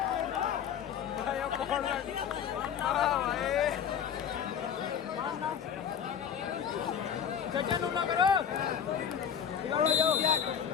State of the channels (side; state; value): right; quieter; 8.2 dB